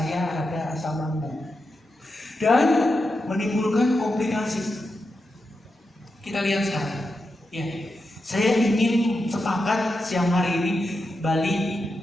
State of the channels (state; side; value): normal; both; correlation 0.88